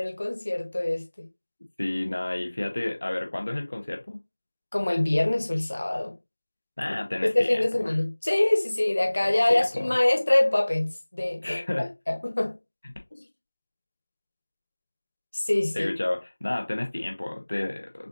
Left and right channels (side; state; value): both; inverted; correlation -1.00